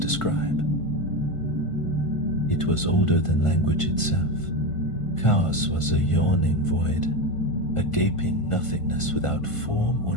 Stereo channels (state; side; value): late; right; 1.5 ms